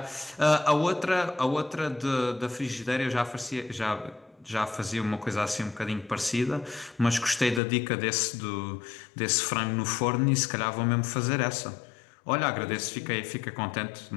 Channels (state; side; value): drops out; right; at 7.6 s